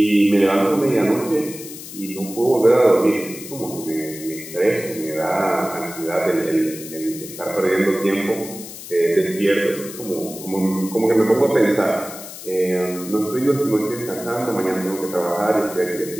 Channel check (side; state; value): left; noise; hiss, 13 dB below the sound